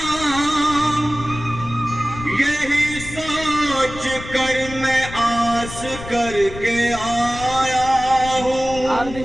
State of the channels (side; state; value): left; noise; rumble, 12 dB below the sound